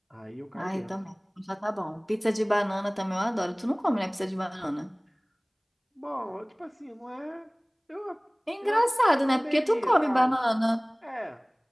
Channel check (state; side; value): identical; both; correlation 1.00